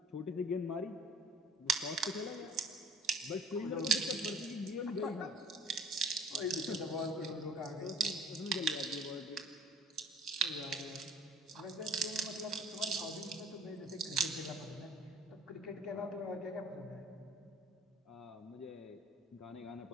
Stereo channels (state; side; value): normal; both; correlation 0.50